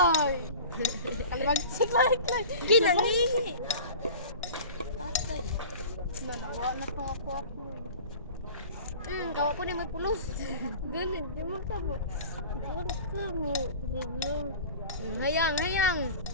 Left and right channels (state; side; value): inverted; both; correlation -0.39